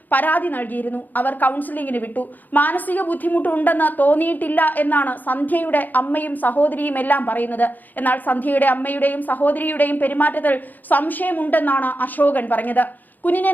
പരാതി നൽകിയിരുന്നു. അവർ കൗൺസിലിംഗിന് വിട്ടു. മാനസിക ബുദ്ധിമുട്ടുണ്ടെന്ന് തോന്നിയിട്ടില്ല എന്നാണ് സന്ധ്യയുടെ അമ്മയും സഹോദരിയും എല്ലാം പറയുന്നത്. എന്നാൽ സന്ധ്യയുടെ അമ്മയുടെയും സഹോദരിയുടെയും പെരുമാറ്റത്തിൽ സംശയമുണ്ടെന്നാണ് അശോകൻ പറഞ്ഞത്. കുഞ്ഞിനെ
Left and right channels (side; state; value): right; late; 0.085 ms